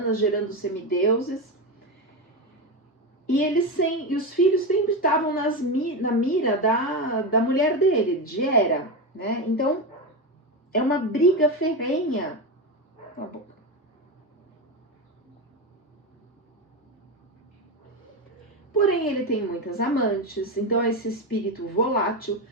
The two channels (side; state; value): both; normal; correlation 0.15